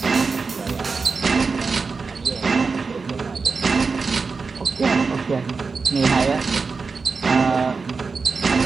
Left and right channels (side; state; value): left; quieter; 4.6 dB